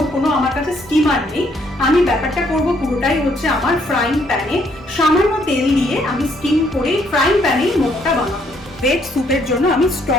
কোনো আমার কাছে স্টিমার নেই। আমি ব্যাপারটা করব পুরোটাই হচ্ছে আমার ফ্রাইং প্যানে, সামান্য তেল দিয়ে আমি স্টিম করে ফ্রাইং প্যানেই মোমোটা বানাবো। ভেজ স্যুপের জন্য আমি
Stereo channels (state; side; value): normal; both; correlation 0.69